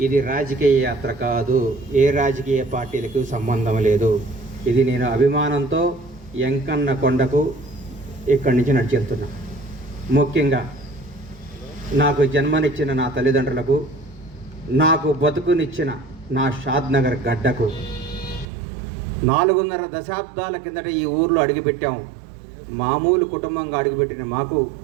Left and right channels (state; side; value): drops out; left; at 18.4 s